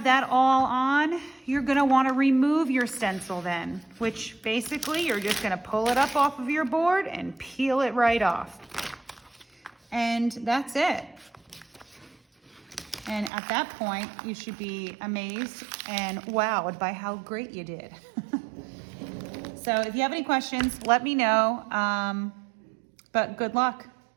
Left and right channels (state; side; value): drops out; left; at 13.3 s